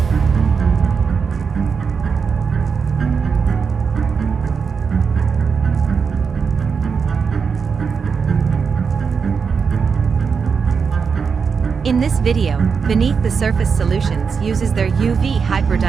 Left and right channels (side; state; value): left; quieter; 5.8 dB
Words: In this video, Beneath the Surface Solutions uses their UV